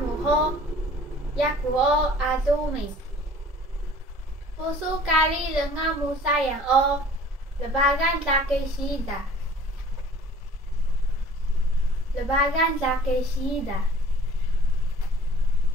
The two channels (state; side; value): normal; both; correlation 0.49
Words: yakuo azumi. Pusu kali dengan musa yang lebagan laki sida. Lebagan laki sida.